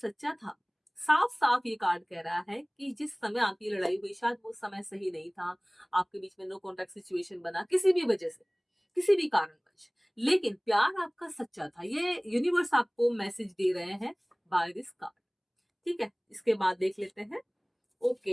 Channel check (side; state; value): both; identical; correlation 1.00